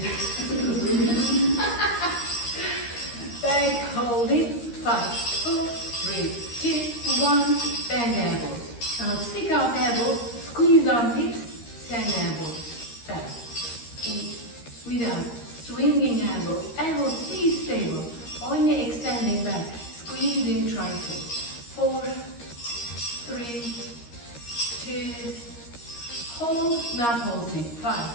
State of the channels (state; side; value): late; right; 13 ms